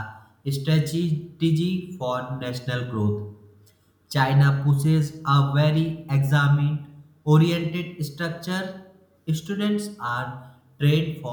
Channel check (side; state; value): both; identical; correlation 1.00